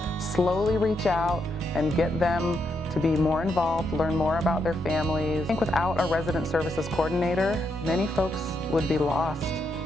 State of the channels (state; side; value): normal; both; correlation 0.80